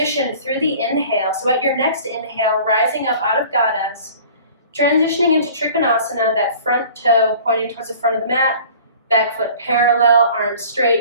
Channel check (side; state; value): both; inverted; correlation -0.46